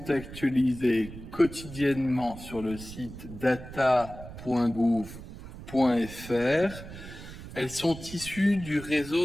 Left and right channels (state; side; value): noise; right; rumble, 13 dB below the sound